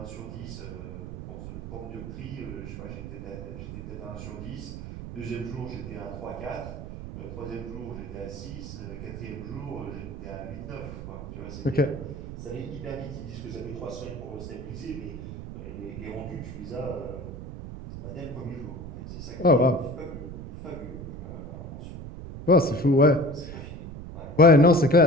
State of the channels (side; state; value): right; noise; rumble, 9 dB below the sound